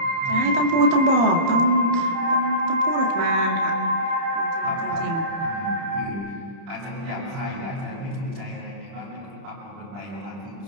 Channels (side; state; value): left; late; 30 ms